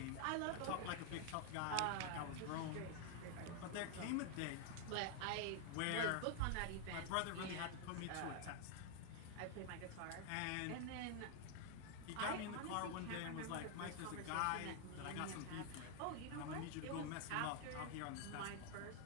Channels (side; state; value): both; different; correlation 0.00